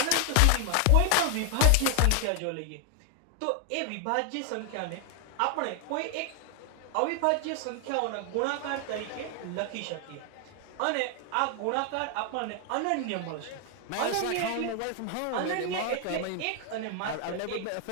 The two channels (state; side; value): different; both; correlation 0.00